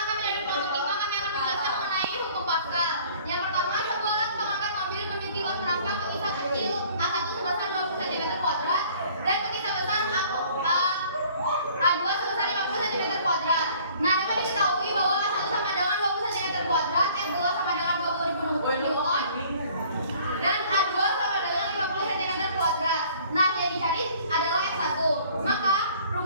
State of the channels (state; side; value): inverted; both; correlation -0.54